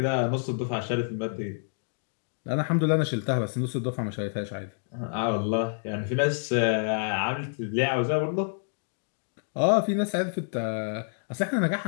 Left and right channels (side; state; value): right; silent; digital silence